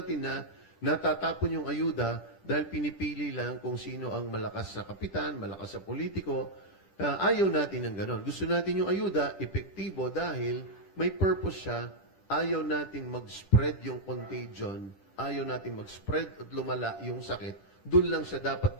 na natatapon yung ayuda dahil pinipili lang kung sino ang malakas sa kapitan, malakas sa politiko. Ayaw natin ng ganon. Gusto natin yung ayuda, epektibo dahil may purpose siya. Ayaw natin mag-spread yung contagion. Ayaw natin mag-spread at lumala yung sakit. Doon lang siya dapat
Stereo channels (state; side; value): late; right; 10 ms